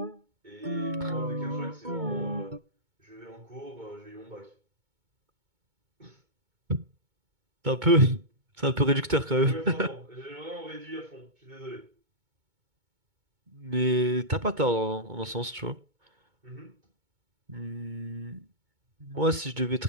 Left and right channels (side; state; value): left; late; 2.2 ms